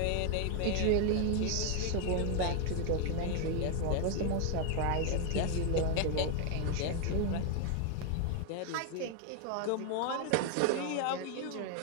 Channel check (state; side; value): different; both; correlation 0.01